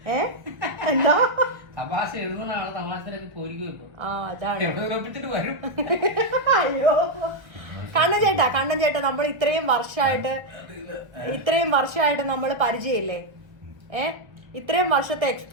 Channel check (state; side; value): late; left; 1.4 ms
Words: എന്താ തമാശ എഴുതുന്നതാണ് തമാശയിലേക്ക് പോയിരിക്കും. അതാണ്. അയ്യോ കണ്ണൻ ചേട്ടാ നമ്മൾ ഇത്രയും വർഷമായിട്ട് നമ്മൾ പരിചയമില്ലേ? ഇത്രയും വർഷത്തെ